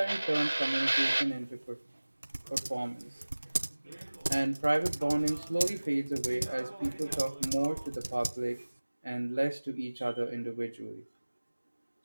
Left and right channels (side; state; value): both; inverted; correlation -1.00